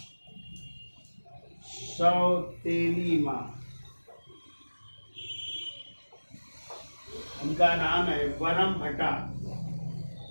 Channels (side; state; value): both; inverted; correlation -1.00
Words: सौतेली माँ, उनका नाम है वरम भट्टा,